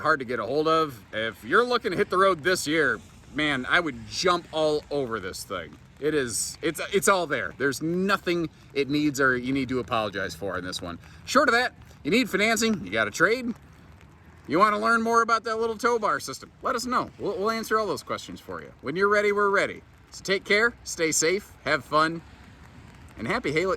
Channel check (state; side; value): identical; both; correlation 1.00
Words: to get a hold of. If you're looking to hit the road this year, man, I would jump all over this thing. It's all there. There's nothing it needs or you need to apologize for in this one. Short of that, you need financing, you got a trade, you want to learn more about that little tow bar system, let us know. We'll answer all those questions for you. When you're ready, we're ready. So take care, stay safe, have fun, and happy